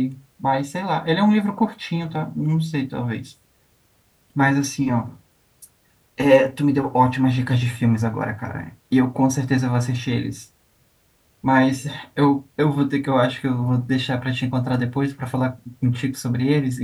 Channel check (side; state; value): both; identical; correlation 1.00